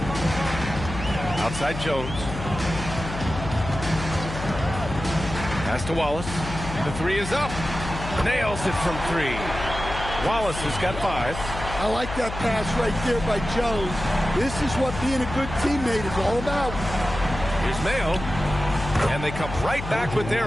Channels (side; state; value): left; noise; hum, 8 dB below the sound